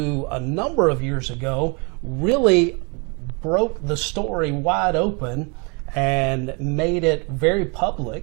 a number of years ago really broke the story wide open and made it very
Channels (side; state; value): left; quieter; 32.7 dB